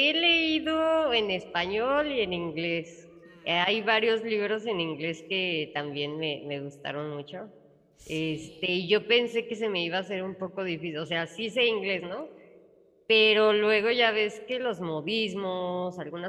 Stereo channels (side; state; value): both; identical; correlation 1.00